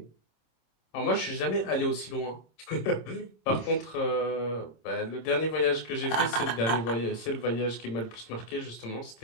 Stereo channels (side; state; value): right; late; 26 ms